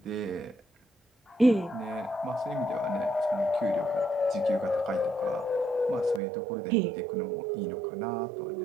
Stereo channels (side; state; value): left; drops out; at 6.2 s